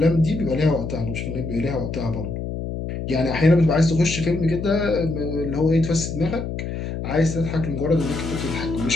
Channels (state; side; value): noise; left; hum, 5 dB below the sound